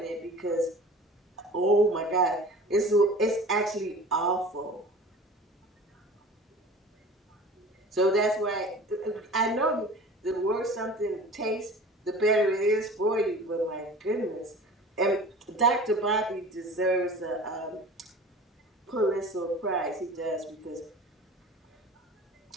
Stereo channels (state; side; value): normal; both; correlation 0.40